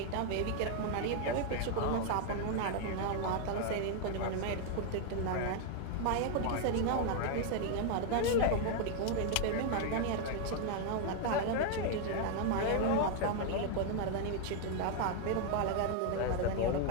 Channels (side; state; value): both; different; correlation 0.00